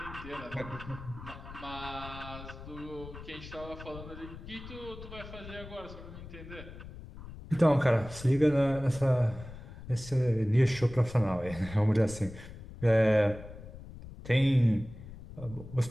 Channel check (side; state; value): left; noise; rumble, 14 dB below the sound